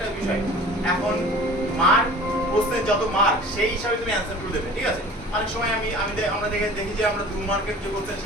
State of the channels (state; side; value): normal; both; correlation 0.43